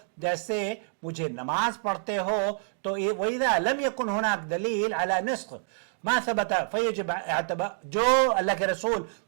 जैसे मुझे नमाज पढ़ते हो तो वइदा लम यकुन हुनाक दलील अला नस्ख मा सबत फयजिब इअतबा, जो अल्लाह के रसूल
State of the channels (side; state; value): left; silent; digital silence